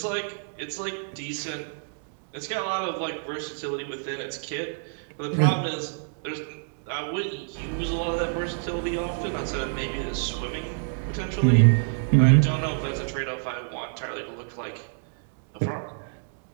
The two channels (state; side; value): silent; left; digital silence